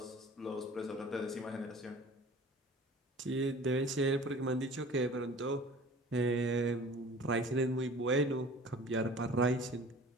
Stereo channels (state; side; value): normal; both; correlation 0.44